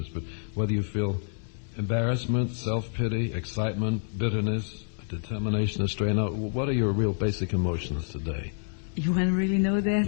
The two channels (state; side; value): silent; right; digital silence